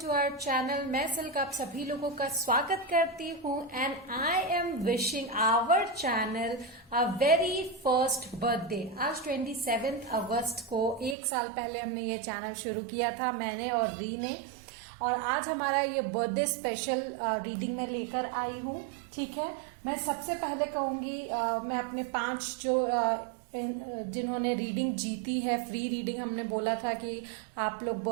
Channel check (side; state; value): left; drops out; at 11.2 s